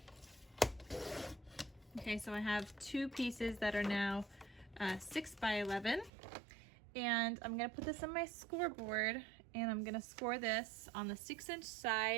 Okay, so I have 2 pieces that are now 6 by 11, and I'm gonna put this on my scoreboard, and I'm gonna score this on the 6-inch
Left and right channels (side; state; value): left; drops out; at 6.1 s